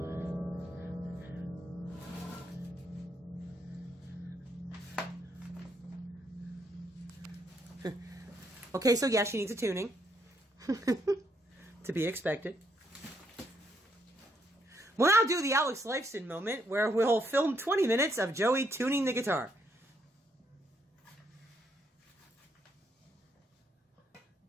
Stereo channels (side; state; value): both; normal; correlation 0.75